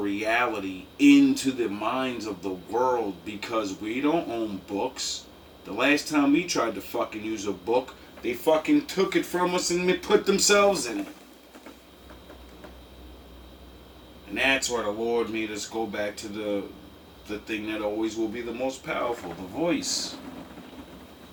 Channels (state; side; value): identical; both; correlation 1.00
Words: into the minds of the world, because we don't own books. The last time we tried to fucking use a book, they fucking took it from us and they put themselves in it. And that's why the Lord made us go back to the thing that always will be the most powerful, the voice.